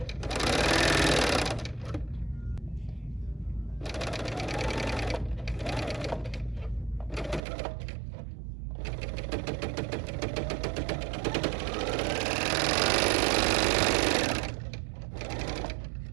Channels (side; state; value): left; drops out; at 7.4 s